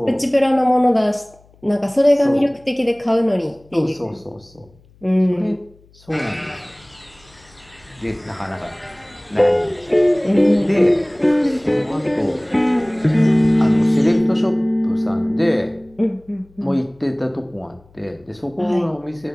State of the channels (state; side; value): noise; left; hum, 29 dB below the sound